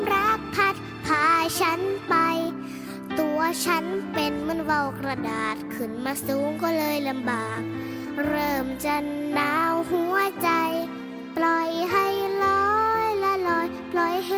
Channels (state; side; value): identical; both; correlation 1.00